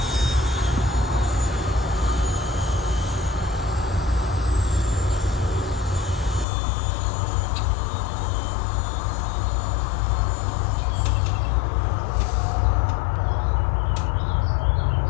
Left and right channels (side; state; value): right; drops out; at 6.5 s